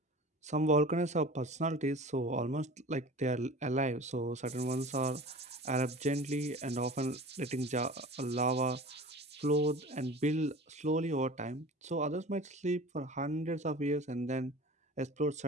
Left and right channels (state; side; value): normal; both; correlation 0.39